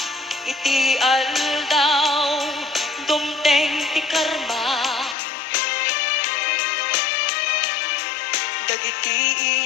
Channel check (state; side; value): drops out; right; at 5.2 s